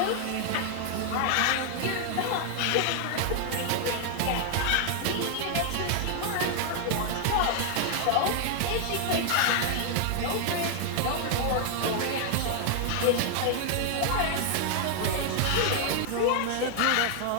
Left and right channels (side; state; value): both; different; correlation 0.00